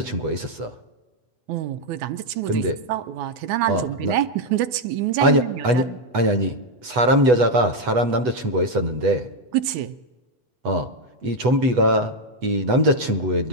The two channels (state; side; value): late; left; 8.1 ms